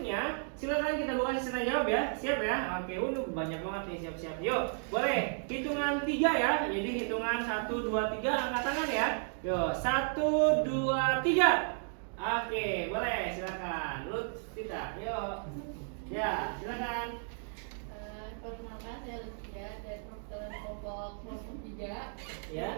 silakan kita buka sesi tanya jawab ya. Siap ya? Oke, banyak banget nih, siap-siap. Yuk, boleh hitungan 3 ya. Jadi hitungan 1, 2, 3 angkat tangan ya. Yuk, 1, 2, 3. Oke, boleh silakan. Lutfita, yuk. Ya, silakan. Perkenalkan, saya Lutfia dari kelompok 3. Ya.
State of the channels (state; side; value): silent; left; 55 dB below the other